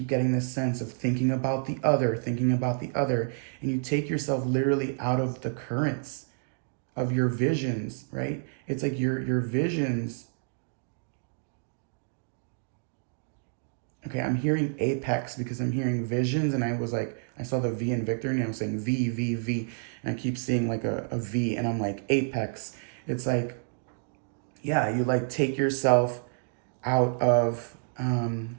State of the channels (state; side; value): silent; left; digital silence